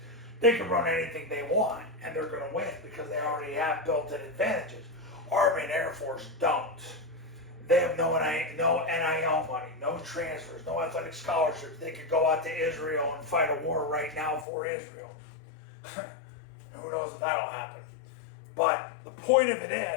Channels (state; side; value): drops out; right; at 14.5 s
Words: they can run anything they want and they're going to win because they already have built-in advantages. Army and Air Force don't. They have no NIL money, no transfers, no athletic scholarships. They could go out to Israel and fight a war right now for Israel. Who knows if that'll happen. But the point of it